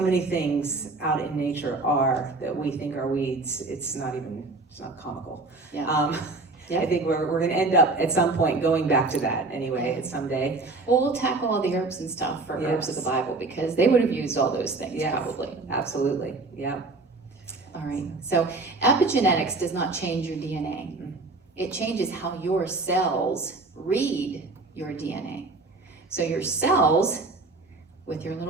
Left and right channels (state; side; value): quieter; left; 3.5 dB